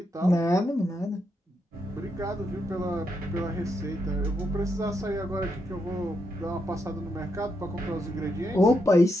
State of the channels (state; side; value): normal; both; correlation 0.81